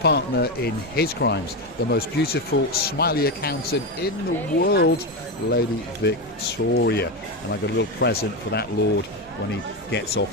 in his crimes, the most beautiful, smiley accountant in the world, Lady Victoria. And I got a little present for that lord when he gets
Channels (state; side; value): normal; both; correlation 0.13